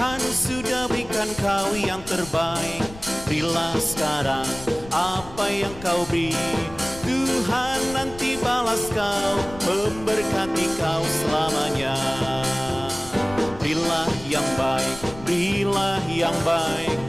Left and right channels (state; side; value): noise; left; rumble, 16 dB below the sound